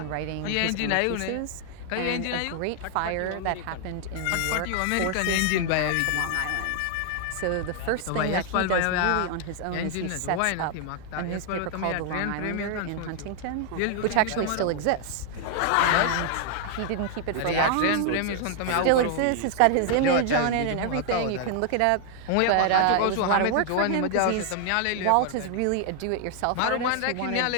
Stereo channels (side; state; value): both; different; correlation 0.00